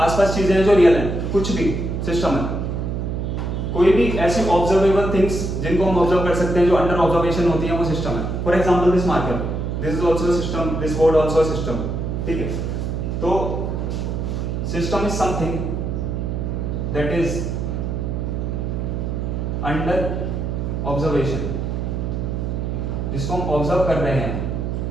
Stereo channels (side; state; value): right; noise; hum, 2 dB below the sound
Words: चीजें हैं जो रियल हैं, कुछ भी सिस्टम है। कोई भी ऐसी ऑब्जर्वेबल थिंग्स जिनको हम ऑब्जर्व कर सकते हैं, जो अंडर ऑब्जर्वेशन होती है, वो सिस्टम है। For example this marker, this is also a system, this board also a system. ठीक है, तो system is something that is under observation. जिसको हम ऑब्जर्व कर रहे हैं